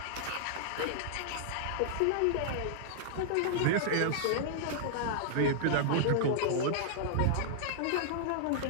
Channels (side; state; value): both; different; correlation -0.01